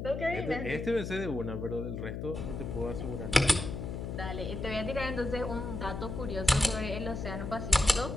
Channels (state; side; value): noise; left; hum, 5 dB below the sound